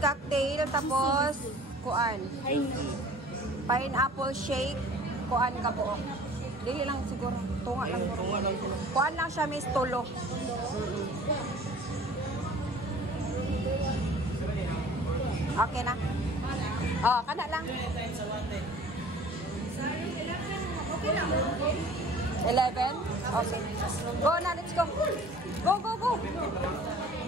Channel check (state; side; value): normal; both; correlation 0.48